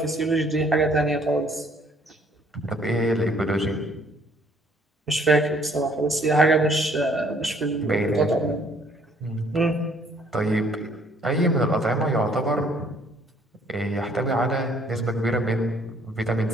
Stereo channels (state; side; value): normal; both; correlation 0.62